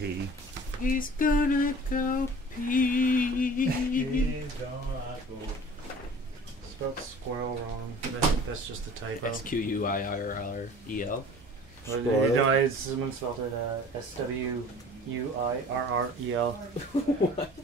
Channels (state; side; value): normal; both; correlation 0.45